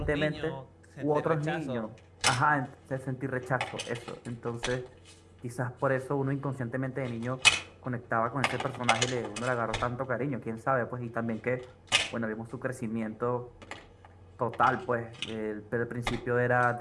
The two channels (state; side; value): identical; both; correlation 1.00